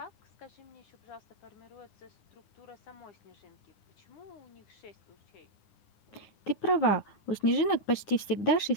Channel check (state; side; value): late; right; 9.9 ms